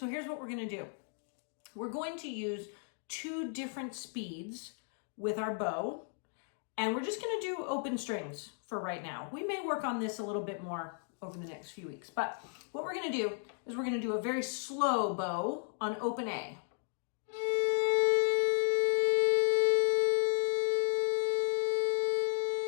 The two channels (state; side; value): silent; right; 55 dB below the other